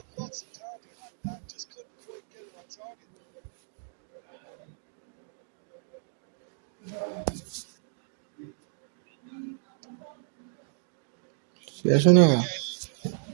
lots of power behind that. Just couldn't quite get it on target. শেষ না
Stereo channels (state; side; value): silent; left; digital silence